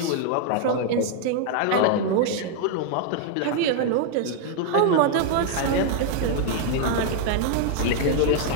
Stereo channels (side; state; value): both; different; correlation 0.00